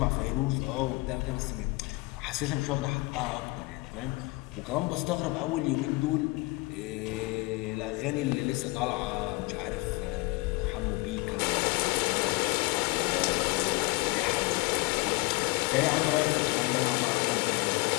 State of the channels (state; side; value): quieter; right; 24.2 dB